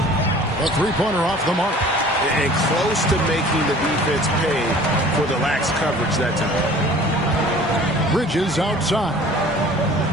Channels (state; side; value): normal; both; correlation 0.48